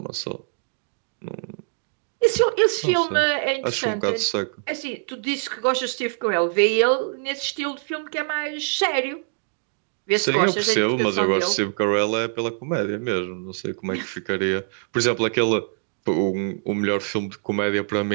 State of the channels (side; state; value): left; silent; digital silence